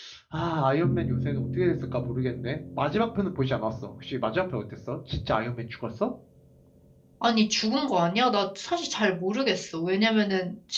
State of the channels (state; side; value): identical; both; correlation 1.00